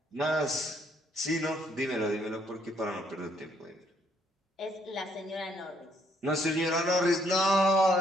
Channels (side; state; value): both; normal; correlation 0.69